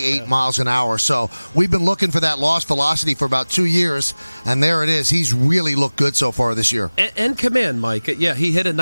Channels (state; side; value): inverted; both; correlation -1.00